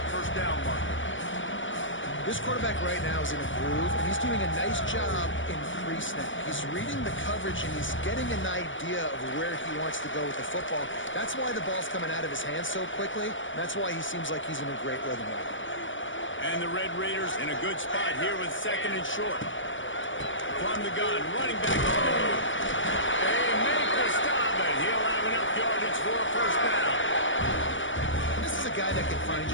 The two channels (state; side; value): late; right; 0.56 ms